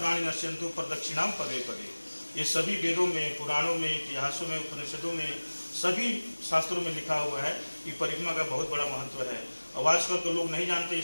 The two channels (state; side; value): inverted; both; correlation -1.00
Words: नश्यन्तु प्रदक्षिणां पदे पदे। ये सभी वेदों में, पुराणों में, इतिहासों में, उपनिषदों में, सभी शास्त्रों में लिखा हुआ है कि परिक्रमा का बहुत बड़ा महत्व है। और आजकल तो लोग नहीं जानते,